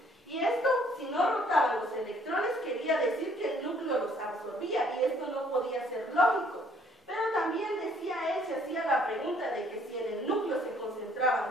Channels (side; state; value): both; normal; correlation 0.62